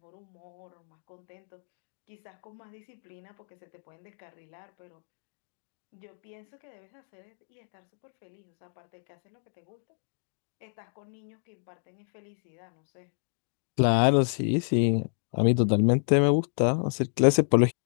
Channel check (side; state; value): right; silent; digital silence